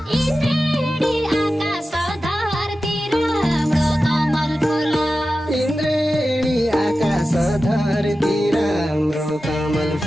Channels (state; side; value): normal; both; correlation 0.93